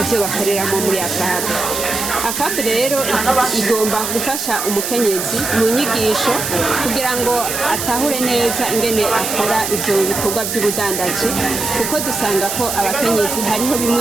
ivyo bakoreramo muri AFAB. AFAB rero igomba gufasha umukenyezi mu nyigisho kugira ngo atahure neza ingene akora ivyo bikorwa by'ubudandaji, kuko dusanga ko abakenyezi hariho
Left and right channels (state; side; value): noise; right; hiss, 3 dB below the sound